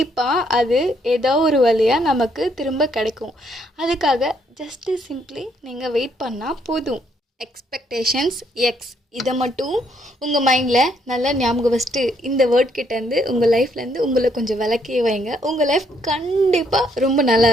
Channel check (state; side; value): normal; both; correlation 0.71